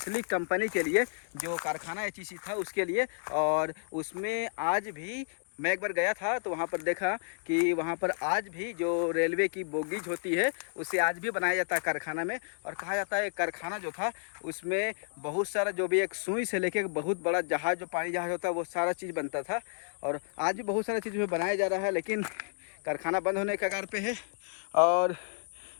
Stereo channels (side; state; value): right; silent; digital silence